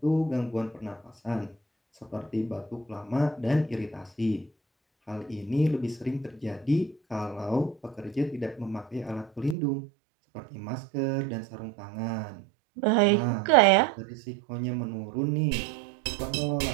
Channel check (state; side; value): drops out; left; at 9.6 s